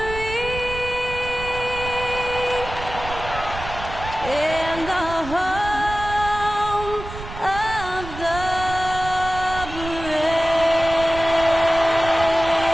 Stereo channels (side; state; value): right; noise; rumble, 10 dB below the sound